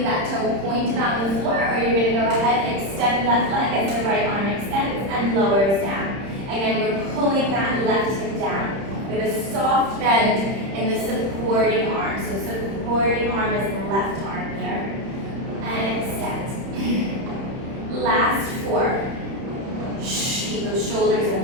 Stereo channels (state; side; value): late; left; 30 ms